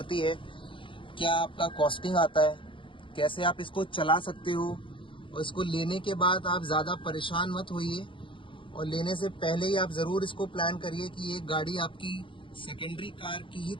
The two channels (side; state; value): right; late; 0.25 ms